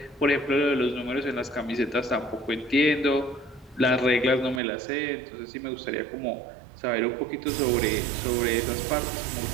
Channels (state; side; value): drops out; left; at 4.6 s